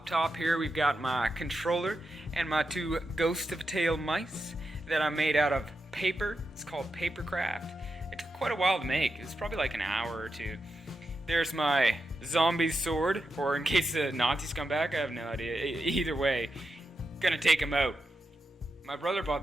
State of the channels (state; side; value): normal; both; correlation 0.88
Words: top here, we've got my controller and my two Ghost of a Tail mice that I made out of paper. It's called Papercraft. It took quite a while to make. It was probably like an hour or two. There's my zombie sword, or in case the Nazis come back, I have no idea. Either way, gonna take them out. My brother bought